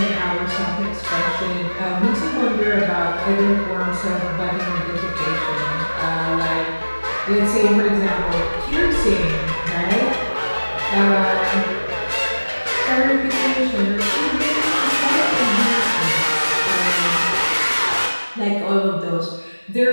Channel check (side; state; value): both; inverted; correlation -1.00